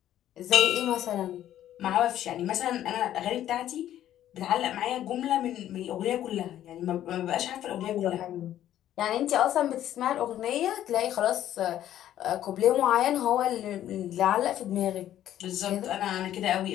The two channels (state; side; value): quieter; right; 12.0 dB